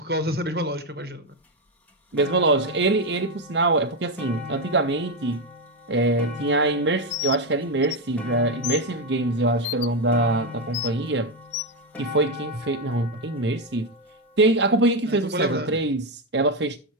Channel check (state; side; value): normal; both; correlation 0.08